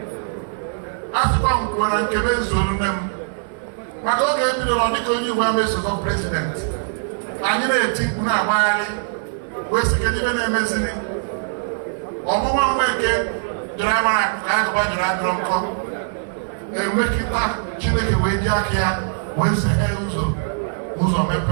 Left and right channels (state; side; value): silent; left; digital silence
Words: asịkwa m kwuo na nkebe zuru nne m maka oge ebidoro dịka onye Igbo ama-esokọ prezident anyị na-eti mkpu na-agbagharị wee sị kedu ibe na-emeziri ọmụma Nweke dọrọ amara ka agụba dọrọ adọrọ nkọ na-emekịta Chineke wee ji aka ya wee seghe ụzọ